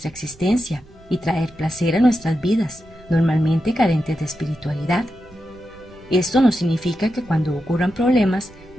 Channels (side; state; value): right; noise; rumble, 24 dB below the sound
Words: existencia y traer placer a nuestras vidas, normalmente carentes de espiritualidad. Esto no significa que cuando ocurran problemas